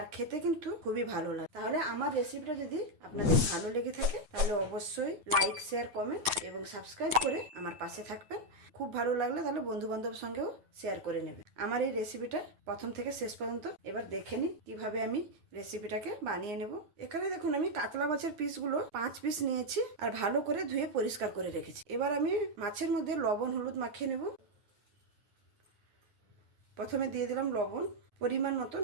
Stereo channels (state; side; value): late; left; 9.2 ms